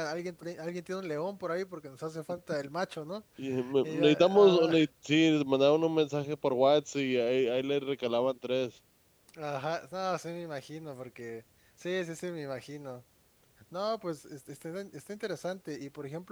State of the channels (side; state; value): both; identical; correlation 1.00